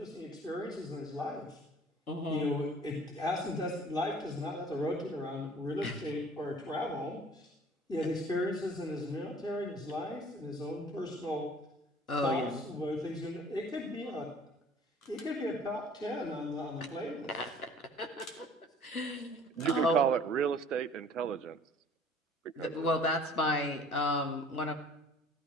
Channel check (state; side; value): normal; both; correlation 0.51